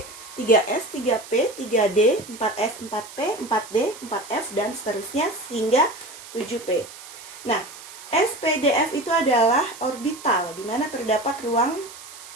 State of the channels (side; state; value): right; noise; hiss, 16 dB below the sound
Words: 3S, 3P, 3D, 4S, 4P, 4D, 4F, dan seterusnya hingga 7P. Nah, S, P, D, F itu adalah orbital, di mana terdapat ruang